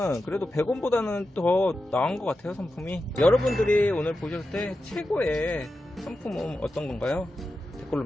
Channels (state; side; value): normal; both; correlation 0.91